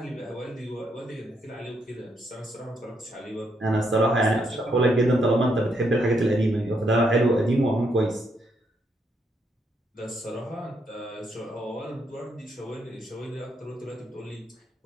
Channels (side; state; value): both; normal; correlation 0.76